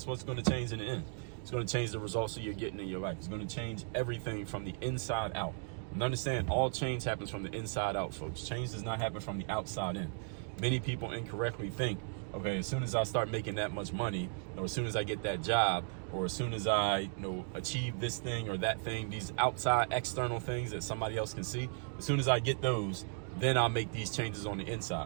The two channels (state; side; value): silent; left; 54 dB below the other